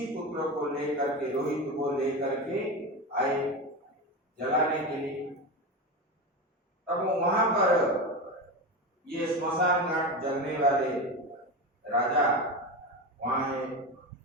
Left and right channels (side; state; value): both; normal; correlation 0.21